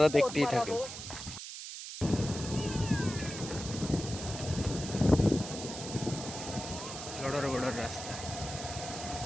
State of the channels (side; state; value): right; noise; hiss, 9 dB below the sound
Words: দেখতেই থাকেন বড় রাস্তা